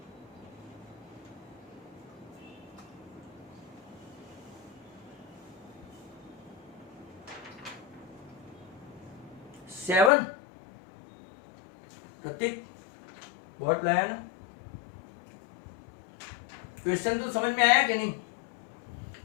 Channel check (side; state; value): right; drops out; at 10.1 s